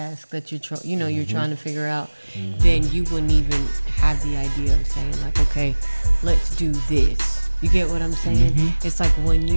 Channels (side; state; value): both; inverted; correlation -1.00